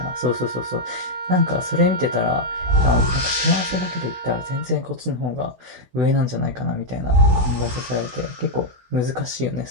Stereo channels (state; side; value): late; left; 16 ms